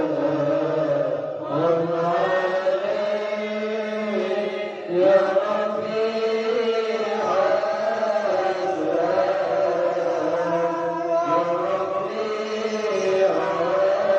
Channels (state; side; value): identical; both; correlation 1.00